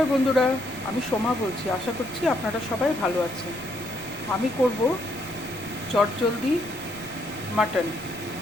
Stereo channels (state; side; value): noise; left; rumble, 21 dB below the sound